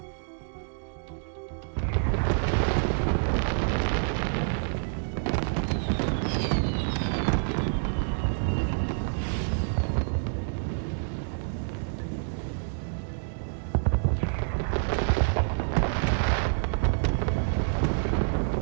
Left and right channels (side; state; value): left; silent; digital silence